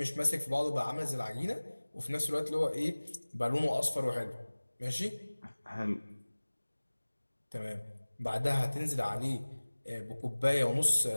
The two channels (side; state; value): both; inverted; correlation -1.00